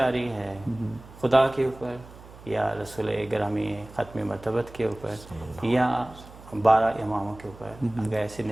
رہی ہے خدا کے اوپر، یا رسول گرامی ختم مرتبت کے اوپر، یا 12 اماموں کے اوپر اگر ایسی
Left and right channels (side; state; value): right; noise; hum, 19 dB below the sound